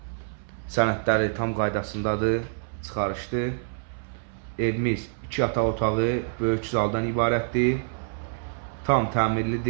Sənədləri tam qaydasındadır, çıxarışdır. Evimiz 2 yataq otağı, böyük zaldan ibarətdir. Tam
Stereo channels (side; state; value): left; silent; 60 dB below the other